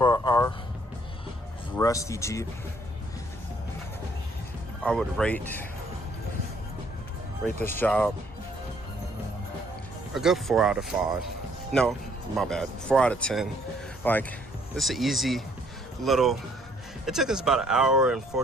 our rusty Jeep, I would rate this job a good 4 out of 5. No, my bad, 4 out of 10. Like, it's an easy little, it took us about an hour and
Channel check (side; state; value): both; normal; correlation 0.64